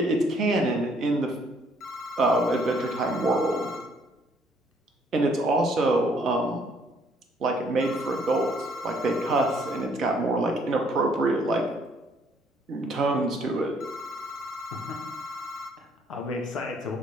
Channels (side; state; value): both; normal; correlation 0.65